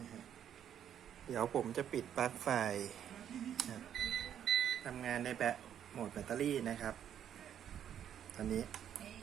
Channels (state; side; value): quieter; left; 9.6 dB